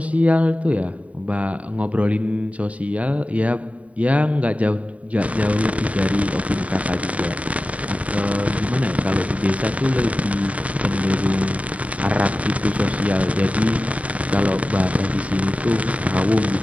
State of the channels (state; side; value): late; left; 0.067 ms